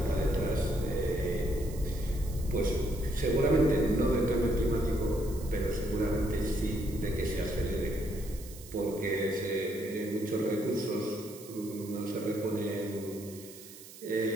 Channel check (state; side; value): noise; right; hiss, 17 dB below the sound